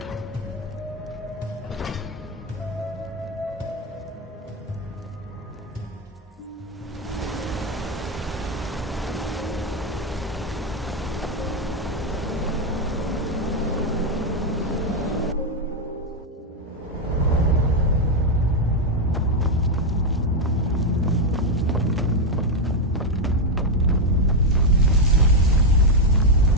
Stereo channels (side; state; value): both; normal; correlation 0.04